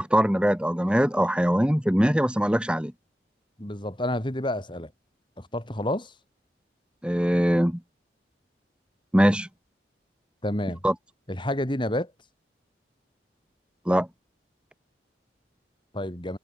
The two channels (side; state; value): both; normal; correlation 0.92